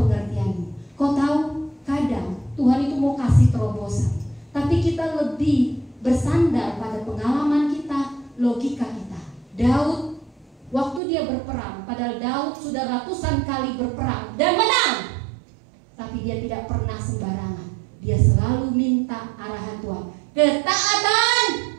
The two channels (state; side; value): drops out; left; at 11.0 s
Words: Kau tahu, kadang Tuhan itu mau kasih terobosan, tapi kita lebih bersandar pada pengalaman kita, logika kita. Daud, waktu dia berperang, padahal Daud sudah ratusan kali berperang dan menang, tapi dia tidak pernah sembarangan. Dia selalu minta arahan Tuhan. Ketaatan